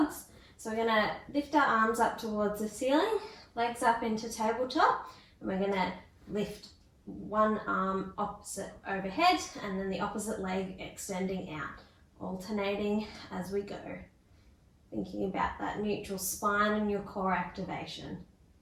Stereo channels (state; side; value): identical; both; correlation 1.00